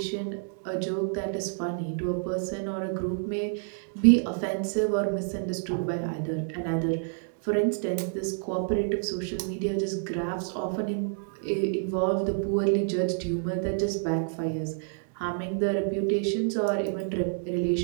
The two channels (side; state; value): left; silent; digital silence